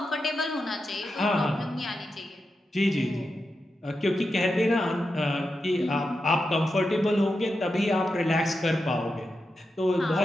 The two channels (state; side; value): normal; both; correlation 0.89